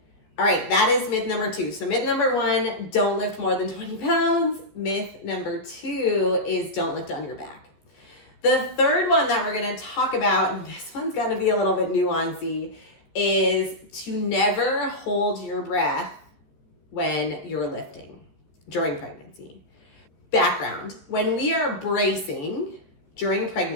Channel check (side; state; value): right; late; 14 ms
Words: All right, that is myth number 2. So myth number 1, don't lift more than 20 pounds. Myth number 2 is don't lift on your back. The third one that we're going to talk about, and this one's going to be a little bit nuancy, is to never hold your breath when you're lifting during pregnancy. Background: when we are bracing during